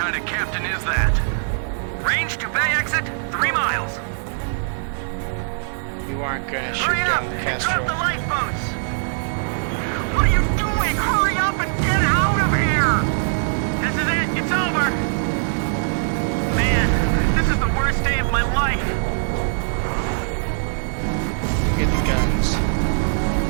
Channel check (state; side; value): silent; left; digital silence